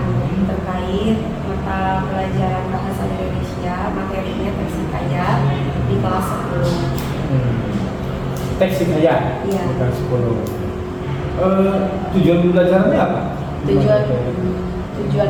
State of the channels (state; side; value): identical; both; correlation 1.00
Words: terkait mata pelajaran bahasa Indonesia, materinya teks hikayat di kelas 10. Teks hikayat? Iya. Bukan 10. Tujuan pembelajarannya apa?